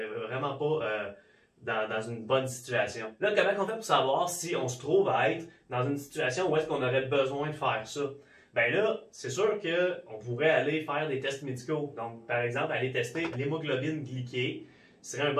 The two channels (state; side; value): identical; both; correlation 1.00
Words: pas dans une bonne situation. Là, comment on fait pour savoir si on se trouve à être dans une situation où est-ce qu'on aurait besoin de faire ça? Ben là, c'est sûr qu'on pourrait aller faire des tests médicaux. Donc, par exemple, aller tester l'hémoglobine glyquée serait un